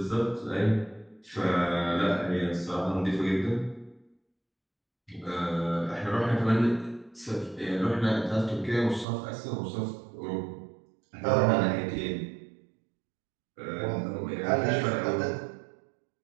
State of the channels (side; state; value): left; drops out; at 9.1 s